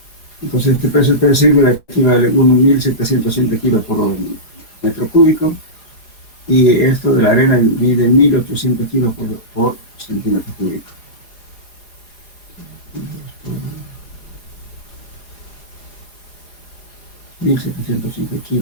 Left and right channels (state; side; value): late; right; 4.7 ms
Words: Entonces este peso específico equivale a 1.707 kilos por metro cúbico, y esto de la arena mide 1.800 kilos por centímetro cúbico. 1.705